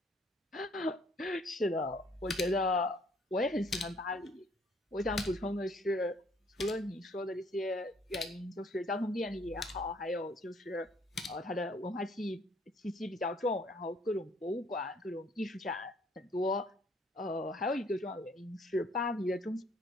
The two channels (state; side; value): normal; both; correlation 0.62